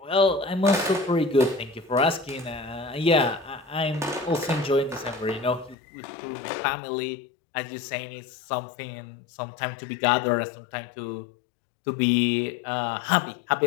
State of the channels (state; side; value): drops out; right; at 5.8 s